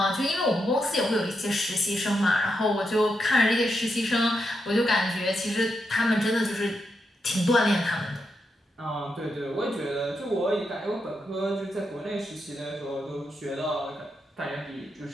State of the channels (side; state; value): both; normal; correlation 0.84